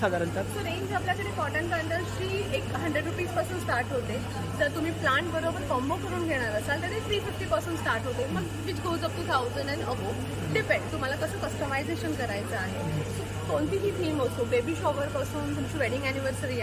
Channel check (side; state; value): both; identical; correlation 1.00